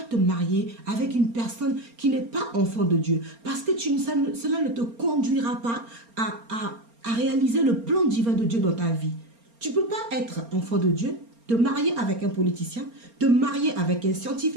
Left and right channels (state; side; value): late; left; 4.3 ms